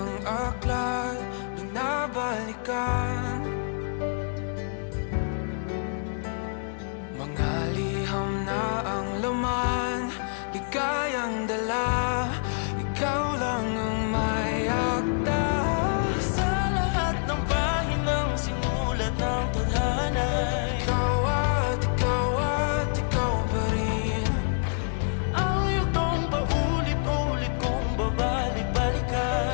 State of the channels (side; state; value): right; silent; digital silence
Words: aklat binabalikan, mga liham na ang laman, ligayang dala, ikaw lang ang may akda. Sa lahat ng pahinang sinulat ng tadhana, Ikaw at ikaw pa rin. ang yugtong paulit-ulit kong